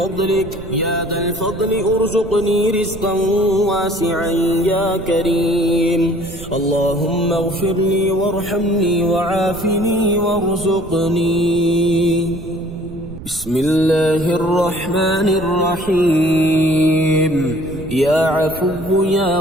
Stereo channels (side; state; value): right; noise; rumble, 14 dB below the sound